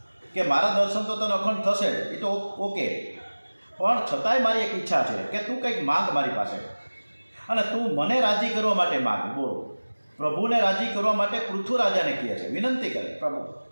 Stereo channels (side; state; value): both; inverted; correlation -1.00